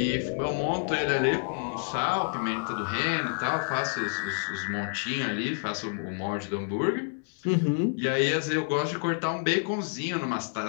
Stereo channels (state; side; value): silent; right; digital silence